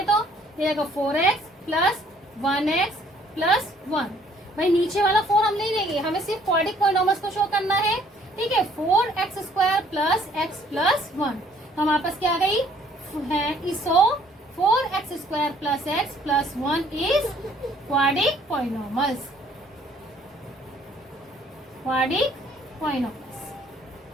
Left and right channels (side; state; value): both; normal; correlation 0.60